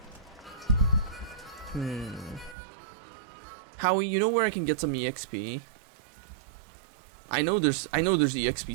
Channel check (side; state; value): left; drops out; at 2.6 s